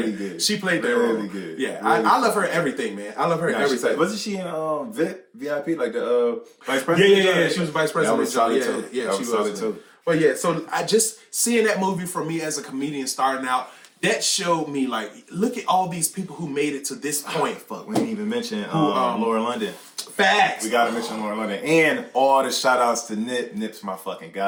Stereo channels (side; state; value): both; identical; correlation 1.00